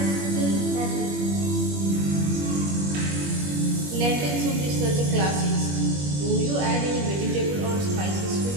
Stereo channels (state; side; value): late; left; 21 ms